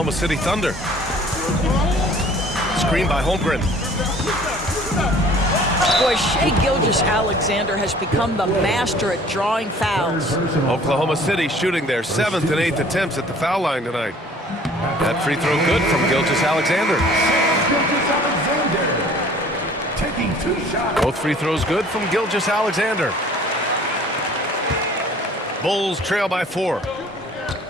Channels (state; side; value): normal; both; correlation 0.51